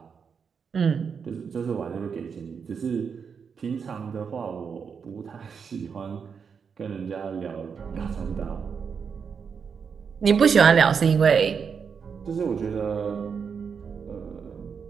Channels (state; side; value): quieter; left; 6.3 dB